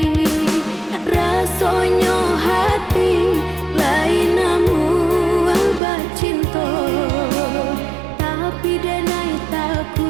Rasonyo hati lain namu alba cinta. Tapi denai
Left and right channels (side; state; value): left; drops out; at 5.8 s